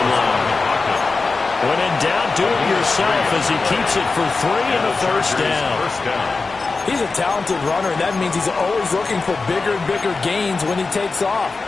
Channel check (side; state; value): right; quieter; 4.0 dB